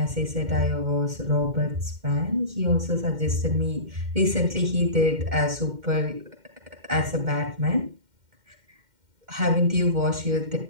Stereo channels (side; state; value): left; late; 2.1 ms